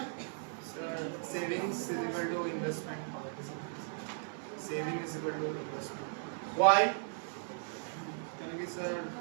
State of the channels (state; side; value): silent; left; digital silence